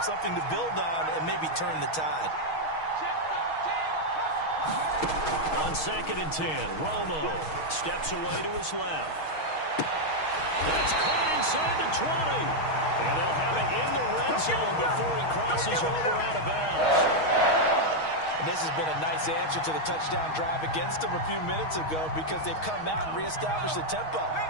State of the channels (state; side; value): late; right; 6.3 ms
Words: something to build on and maybe turn the tide. On 2nd and 10, Romo steps away to his left. That's caught inside the 20. And they'll have it in the red zone before he crosses over out of bounds. And this has been a nice answer to the touchdown drive against them a few minutes ago because they've come out and reestablished the tempo.